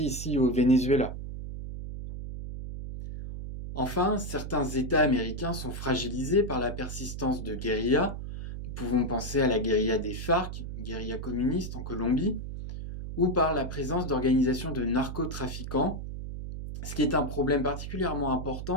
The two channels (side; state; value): right; noise; hum, 7 dB below the sound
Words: au Venezuela. Enfin, certains États américains sont fragilisés par la persistance de guérillas. Nous pouvons penser à la guérilla des FARC, guérilla communiste en Colombie, ou par la présence d'organisations de narcotrafiquants, ce qui est un problème particulièrement important